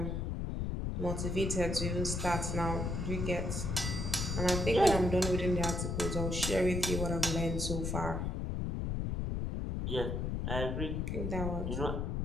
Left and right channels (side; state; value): left; noise; rumble, 1 dB below the sound